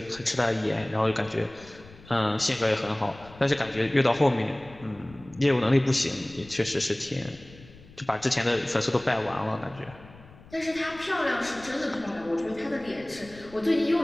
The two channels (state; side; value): noise; left; rumble, 21 dB below the sound